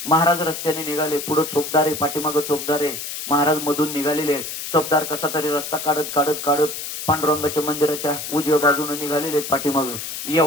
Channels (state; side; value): noise; left; hiss, 7 dB below the sound